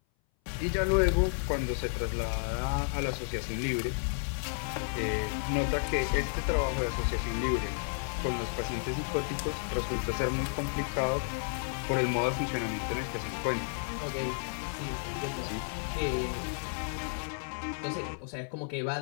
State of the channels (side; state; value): right; silent; 56 dB below the other